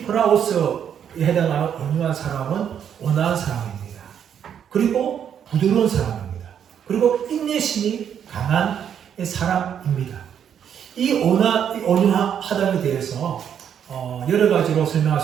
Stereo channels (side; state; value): left; quieter; 8.7 dB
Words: 프라오스에 해당하는 온유한 사람은 온화한 사람입니다. 그리고 부드러운 사람입니다. 그리고 인내심이 강한 사람입니다. 이 온유하다에 대해서 여러 가지로 설명할